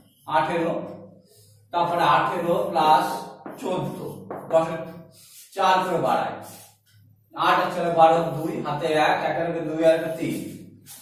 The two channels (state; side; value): identical; both; correlation 1.00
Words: 18, তারপরে 18 প্লাস 14, 10 এর 4 করে বাড়ায়, 8 আর 4 12, 2 হাতে 1, 1 আর 2 আর 3,